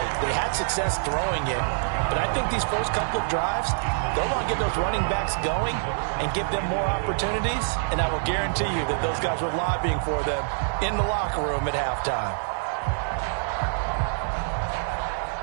They had success throwing it, but I think these first couple of drives, they'll want to get those running backs going and give them more opportunities, and I will guarantee you that those guys were lobbying for them in the locker room at halftime.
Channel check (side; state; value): left; silent; 61 dB below the other